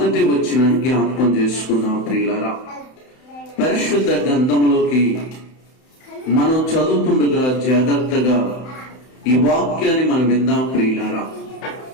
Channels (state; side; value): late; right; 31 ms